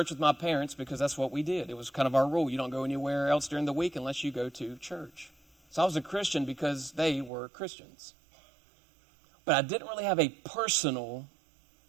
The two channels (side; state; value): left; drops out; at 7.3 s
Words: with my parents because that's what we did. It was kind of our rule. You don't go anywhere else during the week unless you go to church. So I was a Christian because they were Christians. But I didn't really have a personal